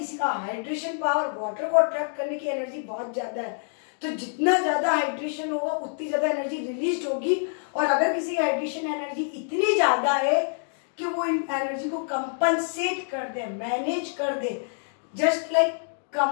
का हाइड्रेशन पावर, वाटर को अट्रैक्ट करने की एनर्जी बहुत ज्यादा है, तो जितना ज्यादा हाइड्रेशन होगा उतनी ज्यादा एनर्जी रिलीज होगी। और अगर किसी की हाइड्रेशन एनर्जी इतनी ज्यादा है कि वो इन एनर्जी को कंपनसेट कर दे, मैनेज कर दे, जस्ट लाइक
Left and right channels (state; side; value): silent; right; digital silence